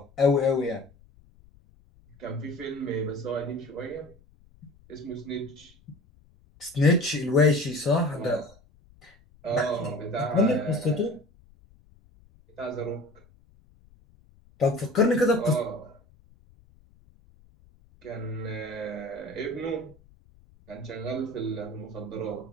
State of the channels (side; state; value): left; noise; rumble, 28 dB below the sound